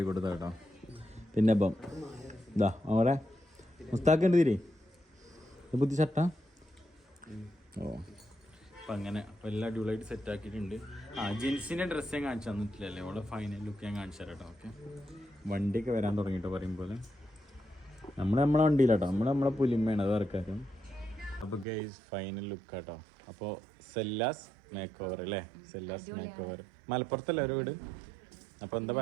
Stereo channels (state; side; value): drops out; left; at 21.7 s